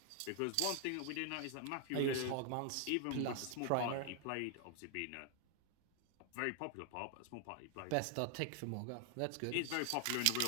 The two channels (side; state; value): both; different; correlation 0.00